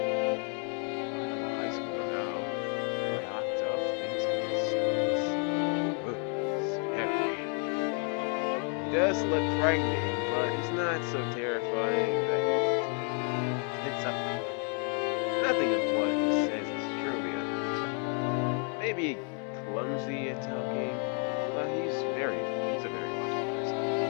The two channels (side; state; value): right; quieter; 39.8 dB